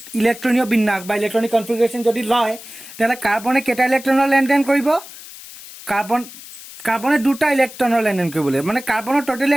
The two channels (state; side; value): noise; left; hiss, 16 dB below the sound